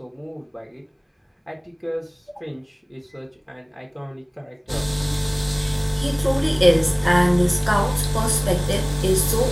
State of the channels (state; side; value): identical; both; correlation 1.00